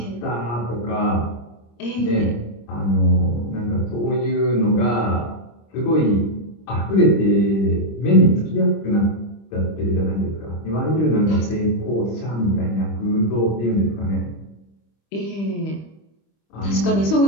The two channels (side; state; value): right; late; 25 ms